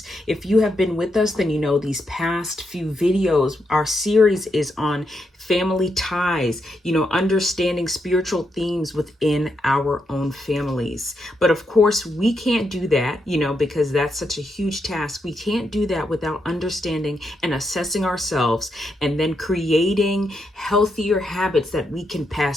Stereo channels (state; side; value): normal; both; correlation 0.82